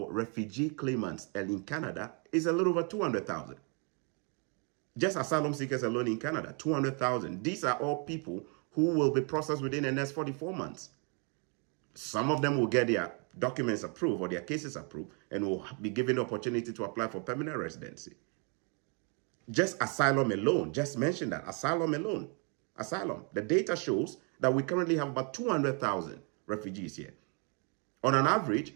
refugee claimants in Canada is a little over 200,000. Just asylum seekers alone in Canada, 200,000. These are all people who will be processed within the next 44 months. Some of them will get their documents approved or their cases approved and will be given the opportunity to apply for permanent residency. Just asylum alone, just mention that, asylum alone. Asylum. The data shows that we currently have about 200,000 refugees here. On an average,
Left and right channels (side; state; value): left; quieter; 36.8 dB